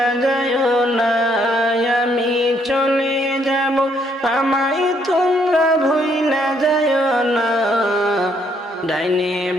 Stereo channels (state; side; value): normal; both; correlation 0.70